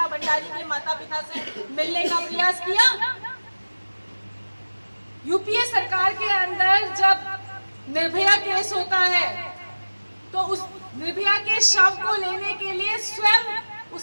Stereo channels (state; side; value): inverted; both; correlation -1.00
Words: भंडारी के माता पिता से मिलने का प्रयास किया? यूपीए सरकार के अंदर जब निर्भया केस होता है तो उस निर्भया के शव को लेने के लिए स्वयं